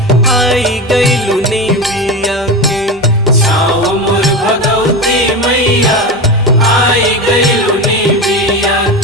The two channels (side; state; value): both; normal; correlation 0.22